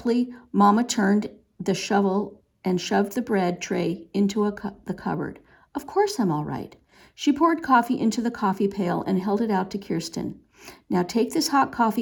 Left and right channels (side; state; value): both; identical; correlation 1.00